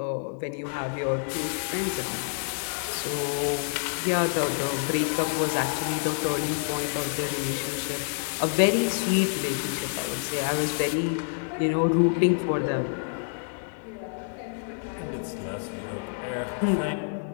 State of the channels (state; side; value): silent; right; digital silence